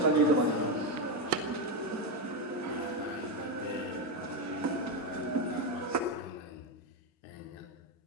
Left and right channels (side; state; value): both; normal; correlation 0.09